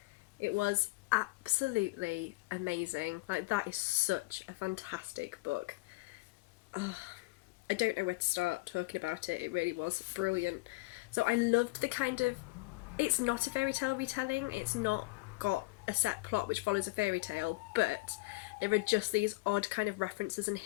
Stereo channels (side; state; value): right; quieter; 23.9 dB